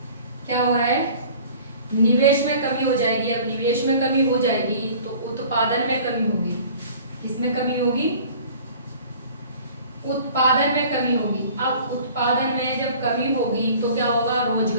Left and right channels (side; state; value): both; inverted; correlation -0.47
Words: क्या हो रहा है, निवेश में कमी हो जाएगी। अब निवेश में कमी हो जाएगी तो उत्पादन में कमी होगी। किसमें कमी होगी, उत्पादन में कमी होगी। अब उत्पादन में जब कमी होगी तो क्या होगा,